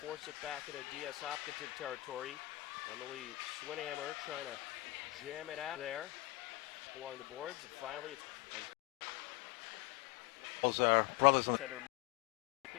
force it back into DS Hopkinton territory. Emily Swinhammer trying to jam it out there along the boards, and finally it's as those are brothers in the center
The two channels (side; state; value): right; quieter; 19.7 dB